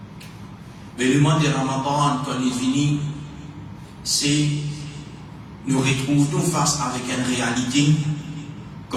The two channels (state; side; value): identical; both; correlation 1.00